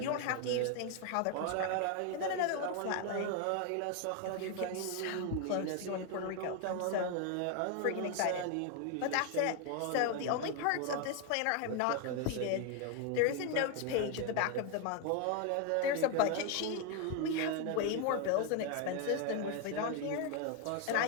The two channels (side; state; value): both; different; correlation 0.01